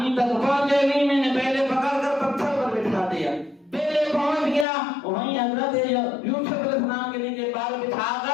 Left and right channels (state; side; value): drops out; right; at 4.7 s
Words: تک پہنچے نہیں، میں نے پہلے پکڑ کر پتھر پر بٹھا دیا، پہلے پہنچ گیا، وہیں حضرت یوسف علیہ السلام کے لیے پال بٹھا